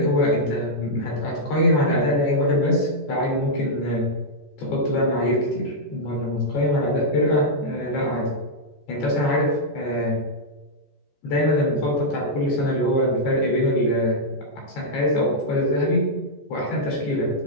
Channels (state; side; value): late; right; 14 ms